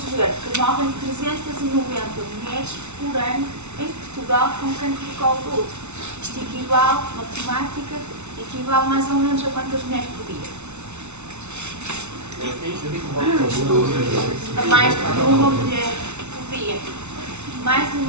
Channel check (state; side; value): late; left; 0.82 ms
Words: ver que morrem 390 mulheres por ano em Portugal com cancro do colo do útero. Isto equivale, matemática, equivale mais ou menos a quantas mulheres por dia? A mais de uma mulher por dia. Mais de